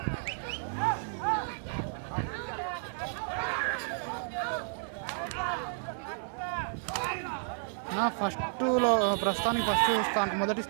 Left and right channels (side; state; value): left; silent; digital silence